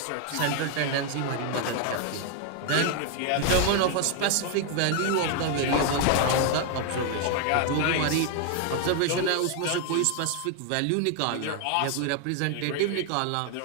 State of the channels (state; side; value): different; both; correlation 0.01